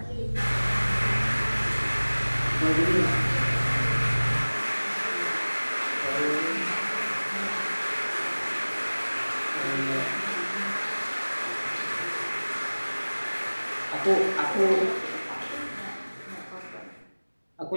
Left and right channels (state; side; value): inverted; both; correlation -1.00